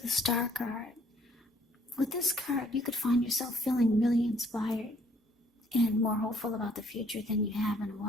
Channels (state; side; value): normal; both; correlation 0.63